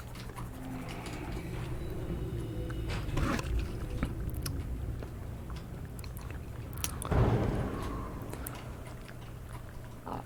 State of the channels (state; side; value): identical; both; correlation 1.00